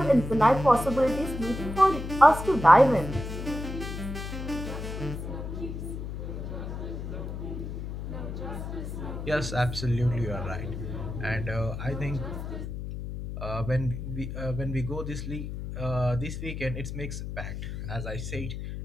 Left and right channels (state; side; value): noise; left; hum, 6 dB below the sound